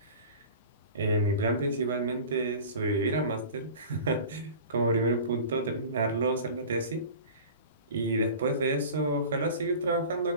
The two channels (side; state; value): both; inverted; correlation -0.37